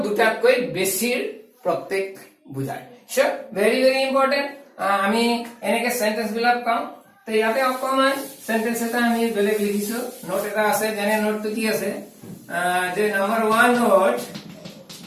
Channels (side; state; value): both; identical; correlation 1.00